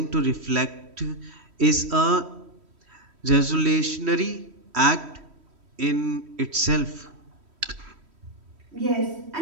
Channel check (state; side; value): late; left; 3.1 ms